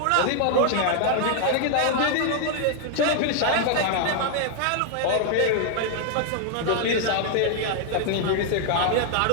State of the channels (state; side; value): different; both; correlation 0.00